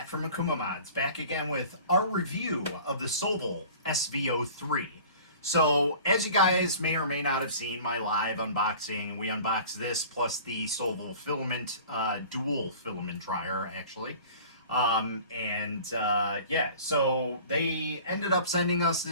from Akumamods, back again with our review of the Sovol SV03. So, as you guys may or may not have seen my live unboxing, we unboxed this plus the Sovol filament, dual filament dryer actually. Yeah, so they ended up sending us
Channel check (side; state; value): both; inverted; correlation -0.44